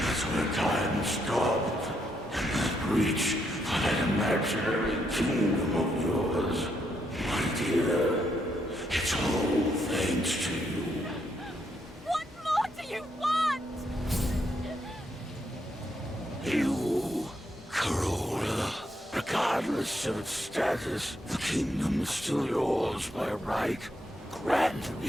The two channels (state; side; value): normal; both; correlation 0.77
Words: that's where time stopped. And that breach for that imaginary kingdom of yours. My dear, it's all thanks to you. What more do you want? You, Carole, regardless of its status, the kingdom is still yours by right. Grant